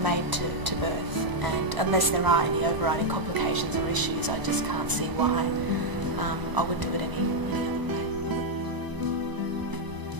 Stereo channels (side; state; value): left; late; 1.0 ms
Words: to birth, and unless there are any overriding complications or issues, I just can't see why I would do it any other way.